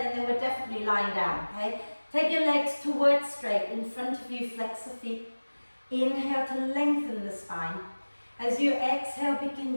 and then we're definitely lying down. Okay? Take your legs towards straight. In front of you, flex the feet. Inhale to lengthen the spine. As you exhale,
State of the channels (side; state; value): both; inverted; correlation -1.00